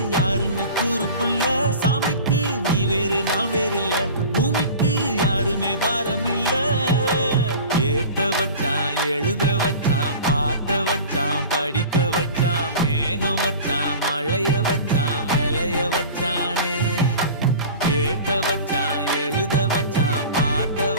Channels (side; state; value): both; inverted; correlation -0.38